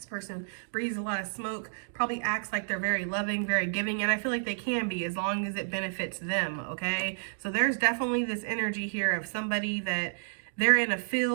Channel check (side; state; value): left; silent; digital silence